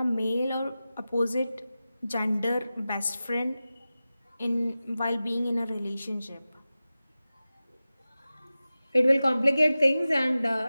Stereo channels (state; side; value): inverted; both; correlation -0.95